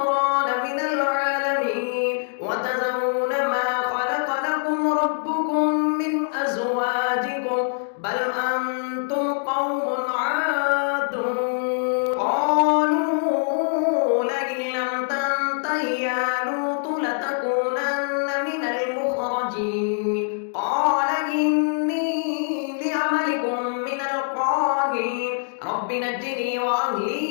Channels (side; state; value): right; silent; digital silence